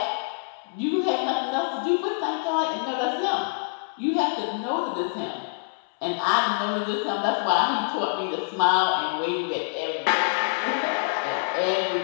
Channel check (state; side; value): silent; right; 61 dB below the other